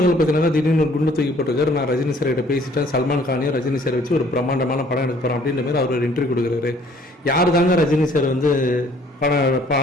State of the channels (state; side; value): normal; both; correlation 0.59